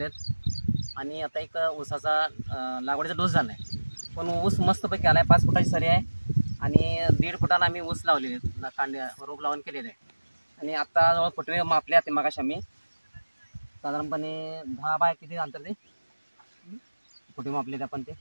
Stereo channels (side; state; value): both; inverted; correlation -1.00